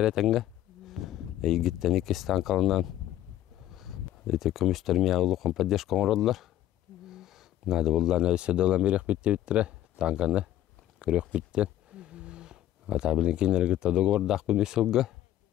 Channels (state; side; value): quieter; right; 13.1 dB